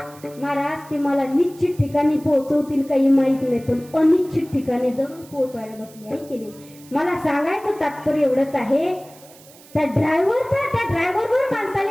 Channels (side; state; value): right; noise; hiss, 23 dB below the sound